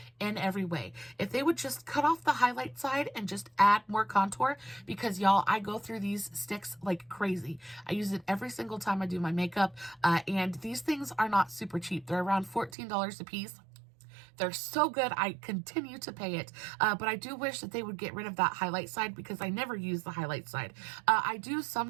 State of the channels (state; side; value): drops out; left; at 12.8 s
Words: in every way. If they would just cut off the highlight side and just add more contour, because y'all, I go through these sticks like crazy. I use it every single time I do my makeup, and these things are not super cheap. They're around $14 a piece. They're so good. I continue to pay it. But I do wish that they would get rid of that highlight side, because I never use the highlight side. I do